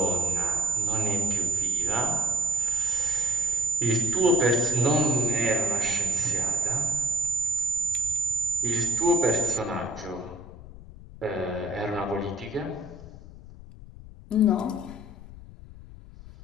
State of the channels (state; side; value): noise; left; rumble, 16 dB below the sound